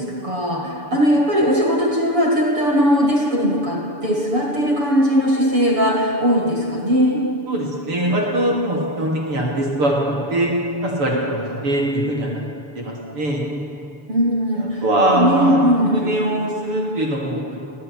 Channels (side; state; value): left; late; 6.9 ms